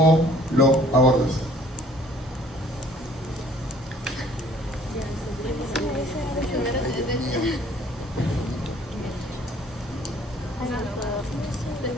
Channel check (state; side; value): normal; both; correlation 0.57